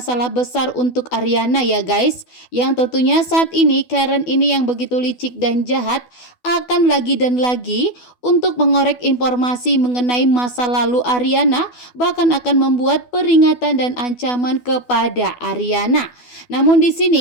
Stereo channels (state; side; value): late; right; 12 ms